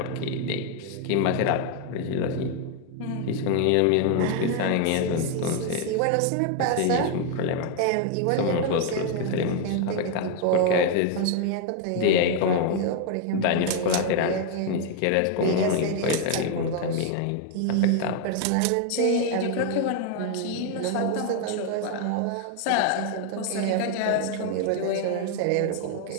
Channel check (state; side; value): different; both; correlation 0.00